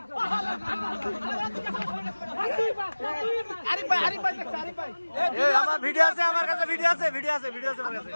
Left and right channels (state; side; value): inverted; both; correlation -1.00